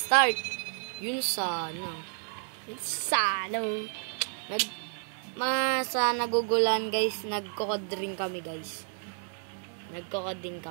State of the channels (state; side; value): silent; left; 57 dB below the other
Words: Yun sana. Sa nagugulan, guys. Nagkokod rin kami, guys. Nagkokod din